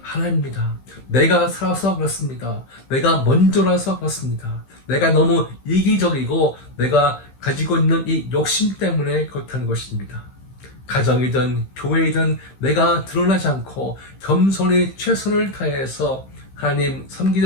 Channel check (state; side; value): late; right; 15 ms